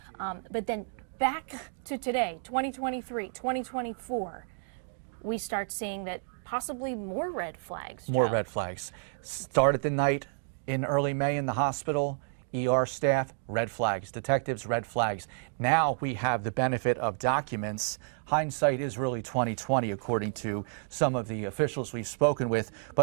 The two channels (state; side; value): silent; left; 57 dB below the other